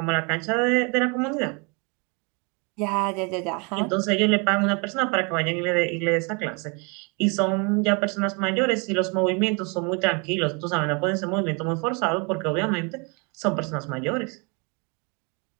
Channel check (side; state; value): left; quieter; 32.0 dB